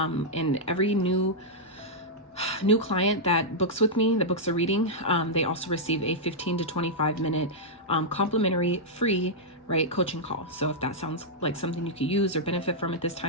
every new client that books with me, that books a reading, they also receive a 15 to 25 minute complimentary free coaching call. So if that sounds like something you could use or benefit from at this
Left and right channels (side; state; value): both; normal; correlation -0.07